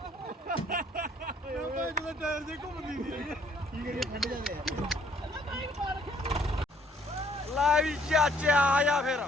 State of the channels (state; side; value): normal; both; correlation 0.63